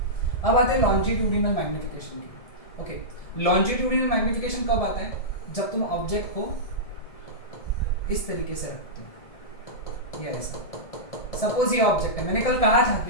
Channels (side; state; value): right; late; 1.7 ms